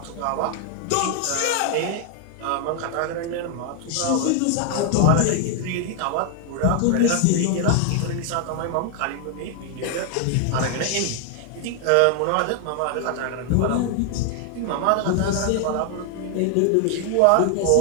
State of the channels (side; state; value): both; different; correlation 0.00